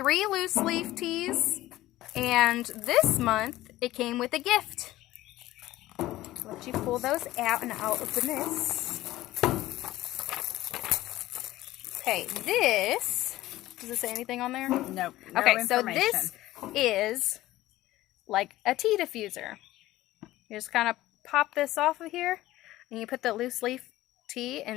loose leaf teas, and this month it came with a gift. Let you pull those out, and I'll open this. Okay, this, does it say anything on there? Nope. No okay, so information. this is like a tea diffuser. You just kind of pop this off of here, and you put the loose leaf tea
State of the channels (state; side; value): quieter; right; 16.2 dB